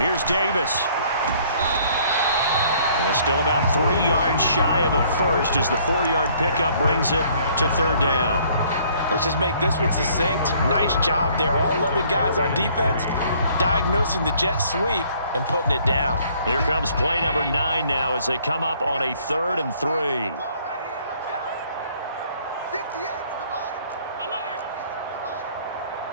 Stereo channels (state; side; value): inverted; both; correlation -0.60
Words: Davis. And still about 3 yards shy of a first as the 4-yard pickup brings it to third down. Let's just make this one succinct. Nice job there. All 11 guys on defense diagnosing the jet sweep and putting it down. Here comes play number 9 now as they come up on a 3rd and 3.